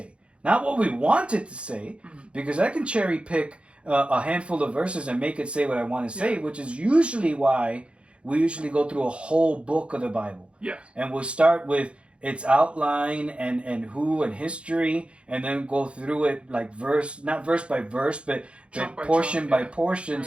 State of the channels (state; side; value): late; left; 0.059 ms